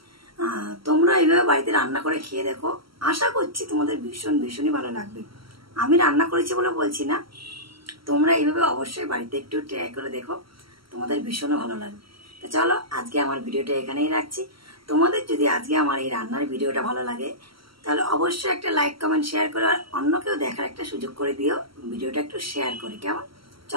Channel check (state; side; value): late; left; 0.75 ms